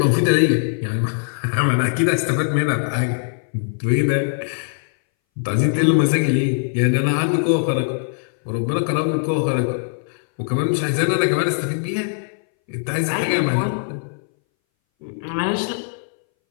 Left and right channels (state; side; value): silent; right; 62 dB below the other